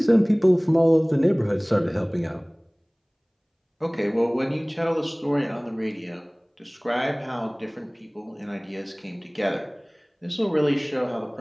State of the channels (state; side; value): identical; both; correlation 1.00